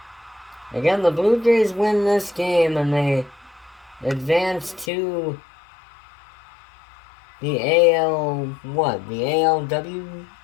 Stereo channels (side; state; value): right; drops out; at 4.9 s